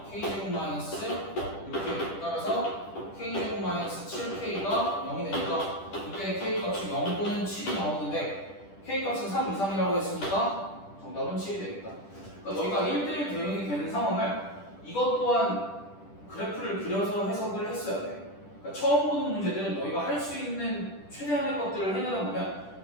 k제곱 마이너스 이렇게 따라서 k제곱 마이너스 7k가 0이 되니까 이때 k 값이 0 또는 7이 나오는데 k 값은 3 이상이라고 했으니까 정답은 7이 되겠다. 그러니까 너희가 1대1 대응이 되는 상황을 이것 또한 그래프를 그려서 해석을 했어야 돼. 그러니까 처음 보는 문제들은 너희가 할 수 있는 최대한의 것들을 해내다 보면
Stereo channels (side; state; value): right; late; 10 ms